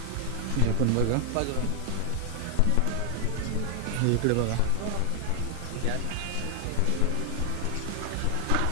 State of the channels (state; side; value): different; both; correlation 0.00